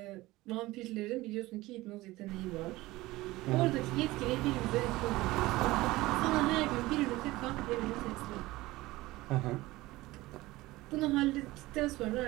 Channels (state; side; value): quieter; left; 19.0 dB